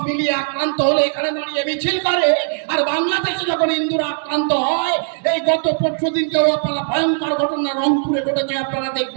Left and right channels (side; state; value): left; silent; digital silence